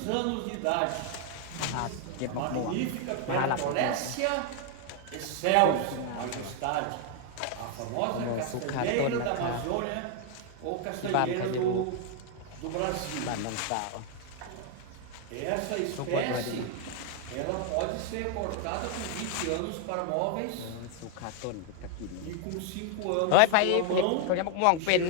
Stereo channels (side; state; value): both; different; correlation 0.00